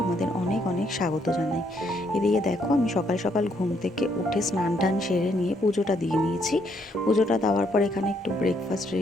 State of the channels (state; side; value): normal; both; correlation 0.72